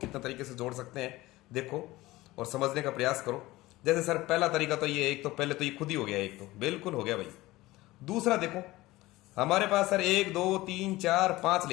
तरीके से जोड़ सकते हैं, देखो और समझने का प्रयास करो। जैसे सर पहला तरीका तो ये, एक तो पहले तो ये खुद ही हो गया, एक तो बिल्कुल हो गया भाई। दूसरा देखो हमारे पास सर 1 2 3 4 5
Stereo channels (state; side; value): quieter; right; 18.7 dB